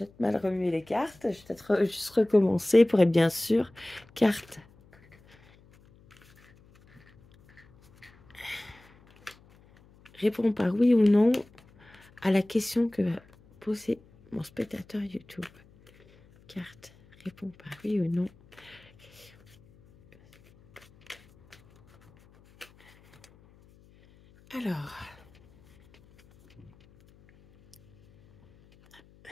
mal remuer les cartes. Je vais peut-être juste recommencer pour être bien sûr. Carte. Réponds par oui ou non à la question que va poser mon spectateur YouTube. Carte. Réponds par oui ou non. Alors.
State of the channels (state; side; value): noise; left; hum, 28 dB below the sound